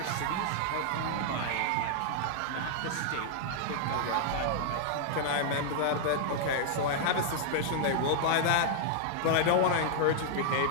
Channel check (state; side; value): different; both; correlation -0.01